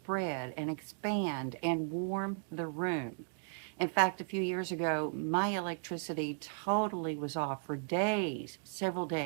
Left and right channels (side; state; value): left; silent; digital silence